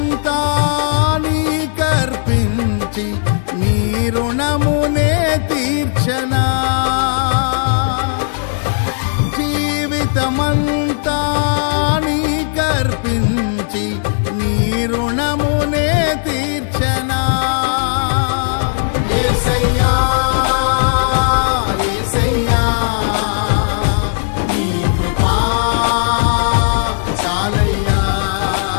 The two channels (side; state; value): right; silent; digital silence